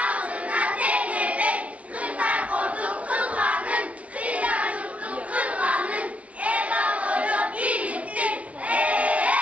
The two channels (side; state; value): left; late; 0.065 ms